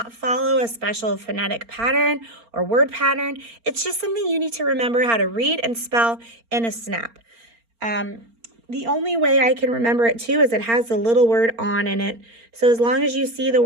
follow a special phonetic pattern or word pattern. It's just something you need to remember how to read and spell in a snap. The only way I can remember it too is it has the little word on in it. So as long as you see the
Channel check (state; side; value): late; left; 4.4 ms